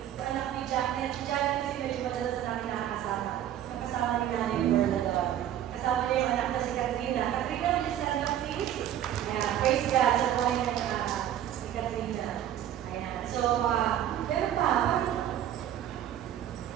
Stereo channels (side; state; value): left; quieter; 11.2 dB